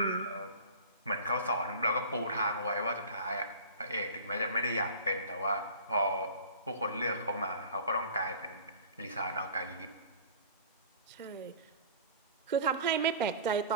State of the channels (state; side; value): inverted; both; correlation -0.42